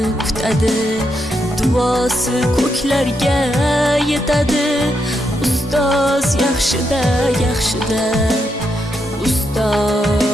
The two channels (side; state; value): both; normal; correlation 0.81